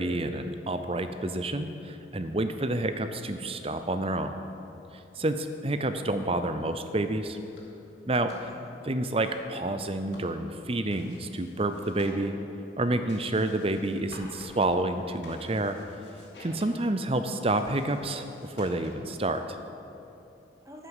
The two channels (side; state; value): both; normal; correlation 0.47